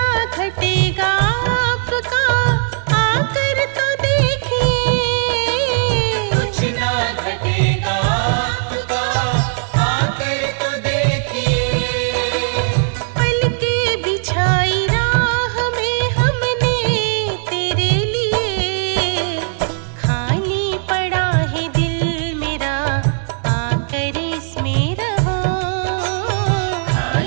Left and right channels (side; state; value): left; silent; digital silence